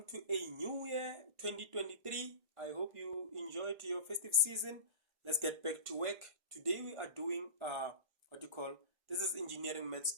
to a new year, 2023. I hope you enjoyed your festive season. Let's get back to work. Today we are doing this is Engineering Maths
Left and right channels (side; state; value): left; late; 1.5 ms